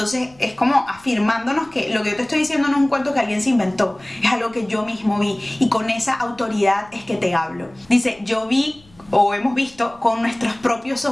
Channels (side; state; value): left; noise; rumble, 28 dB below the sound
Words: es como afirmándonos que lo que yo te estoy diciendo no es un cuento que alguien se inventó, es algo que yo mismo vi, y con esa autoridad es que te hablo. Dice: yo vi, o hemos visto con nuestros propios